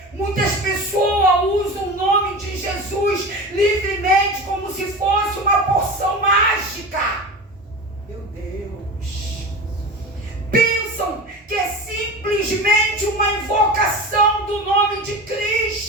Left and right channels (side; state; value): both; normal; correlation 0.29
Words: muitas pessoas usam o nome de Jesus livremente como se fosse uma porção mágica. Meu Deus. Pensam que é simplesmente uma invocação do nome de